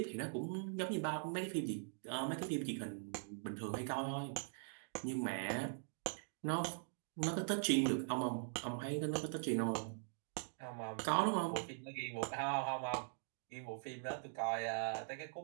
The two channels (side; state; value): left; silent; digital silence